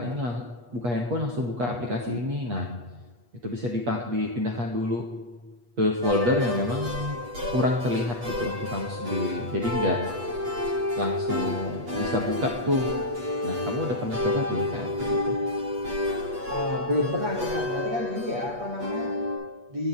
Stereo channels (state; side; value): late; left; 8.3 ms